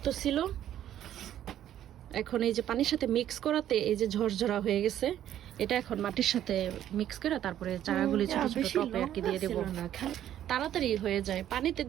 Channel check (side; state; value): left; quieter; 11.4 dB